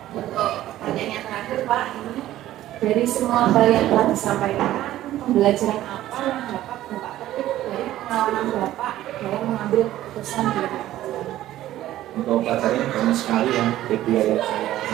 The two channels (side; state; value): left; quieter; 14.0 dB